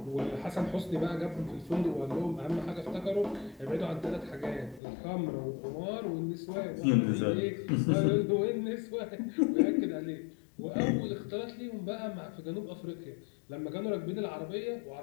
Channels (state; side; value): drops out; right; at 4.8 s